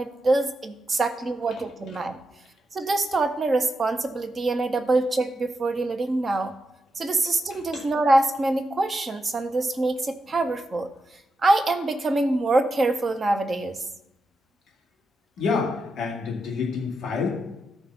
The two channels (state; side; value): normal; both; correlation 0.87